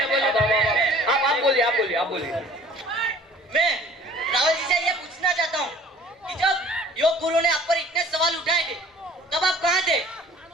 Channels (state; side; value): normal; both; correlation 0.51